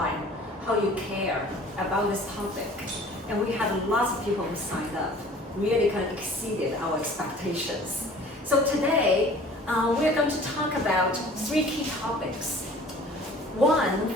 and how you care about this topic. And we had lots of people who signed up, really kind of exceeded our expectations. So today, we're going to talk about 3 key topics.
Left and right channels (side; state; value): both; normal; correlation 0.48